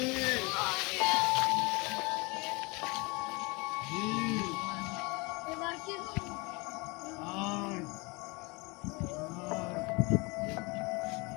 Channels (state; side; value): quieter; right; 27.1 dB